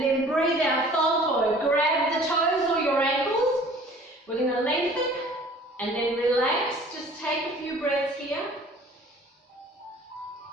then breathe out, fold forward. Grab the toes or your ankles. We're going to lengthen, and then relax. Just take a few breaths here.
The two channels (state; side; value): normal; both; correlation 0.50